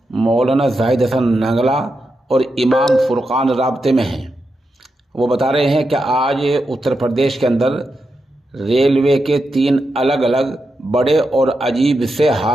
मौलाना जाहिद हसन नंगला और इमाम फुरकान राब्ते में हैं। वो बता रहे हैं कि आज उत्तर प्रदेश के अंदर रेलवे के 3 अलग अलग बड़े और अजीब से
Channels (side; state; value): both; normal; correlation 0.87